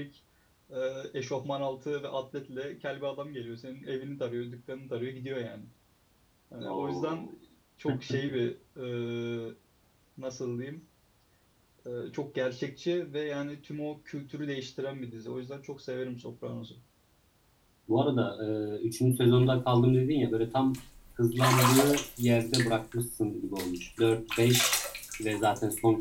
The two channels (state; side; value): identical; both; correlation 1.00